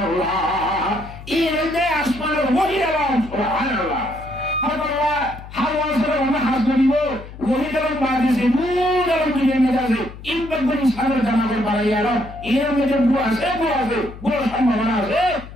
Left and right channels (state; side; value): noise; left; hum, 15 dB below the sound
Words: ইলমে আসমানের ওহিরাম সুবহানাল্লাহ হাওয়া হাওয়া সরে আমরা হাসবিব ওহিরাম বাদিসে মুদার দুনিয়া মেজাজে ইনবাগন সারা জানাবে বাড়াইয়ারো ইলমে যে বুয়া আছে বুয়ার সম্ভাবনা আছে